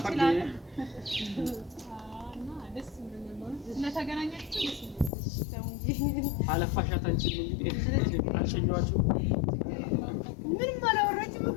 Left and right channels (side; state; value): right; drops out; at 5.1 s